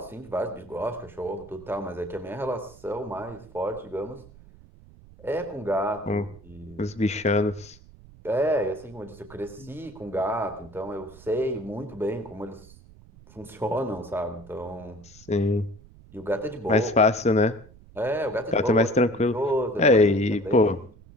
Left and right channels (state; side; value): noise; right; rumble, 22 dB below the sound